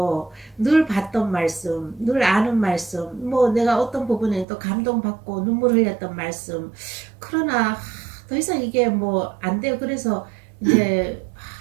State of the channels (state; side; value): drops out; left; at 4.5 s